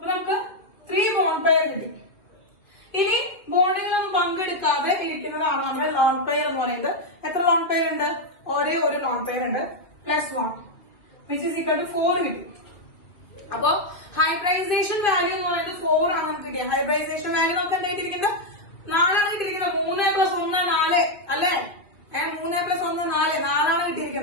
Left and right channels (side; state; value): right; late; 2.1 ms